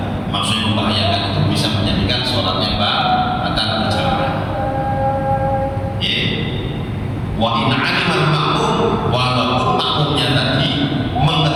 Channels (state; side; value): identical; both; correlation 1.00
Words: Maksudnya membahayakan itu bisa menjadikan sholatnya batal berjamaah. Wa in alimal makmum, walaupun makmumnya tadi